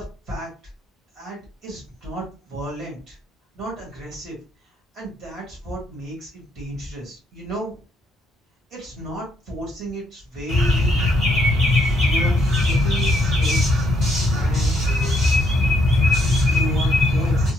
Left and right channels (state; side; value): normal; both; correlation 0.73